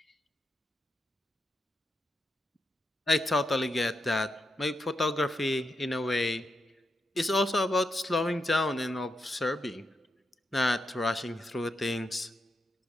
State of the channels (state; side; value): normal; both; correlation 0.84